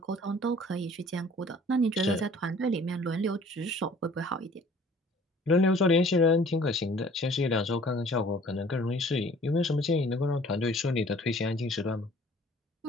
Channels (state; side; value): normal; both; correlation 0.53